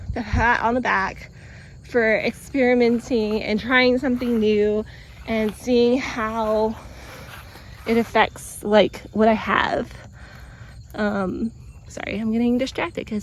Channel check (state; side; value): identical; both; correlation 1.00